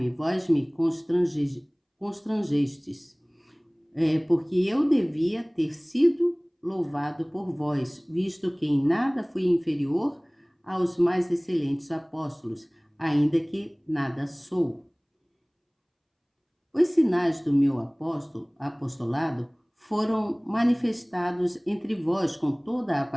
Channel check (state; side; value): identical; both; correlation 1.00